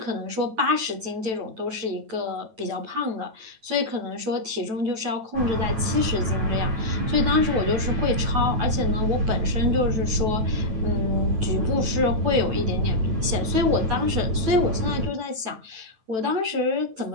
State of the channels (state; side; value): late; left; 9.1 ms